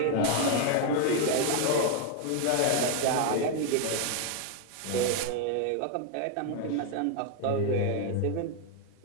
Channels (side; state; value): both; different; correlation 0.01